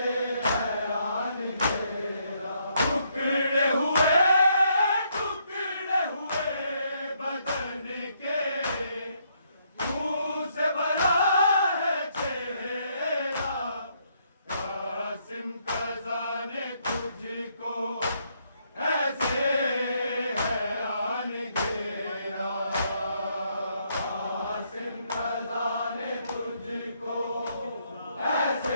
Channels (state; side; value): inverted; both; correlation -0.72